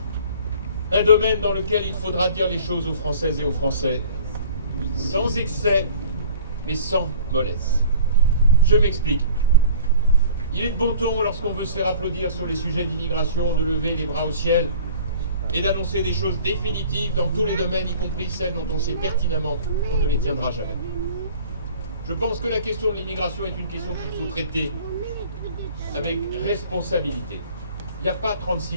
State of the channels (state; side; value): inverted; both; correlation -0.47